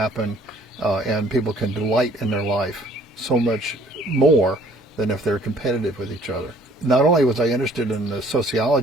and people can delight in their life so much more than if they're competitive with each other. Not only was I interested in the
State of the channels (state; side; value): normal; both; correlation 0.57